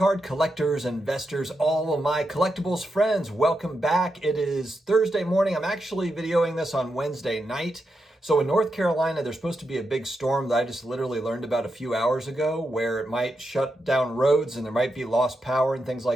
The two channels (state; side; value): normal; both; correlation 0.86